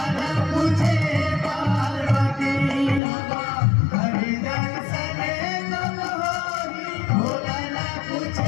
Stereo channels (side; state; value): right; drops out; at 3.0 s